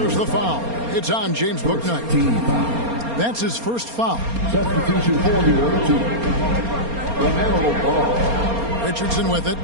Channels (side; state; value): left; late; 4.3 ms